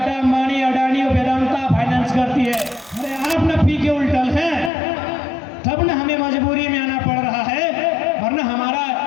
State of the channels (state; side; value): drops out; right; at 4.7 s